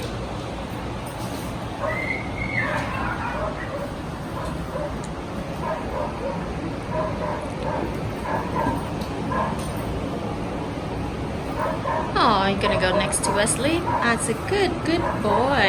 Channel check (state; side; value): identical; both; correlation 1.00